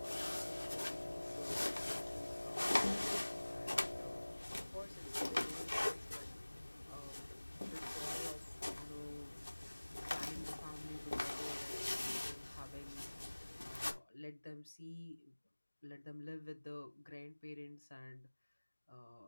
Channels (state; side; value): inverted; both; correlation -1.00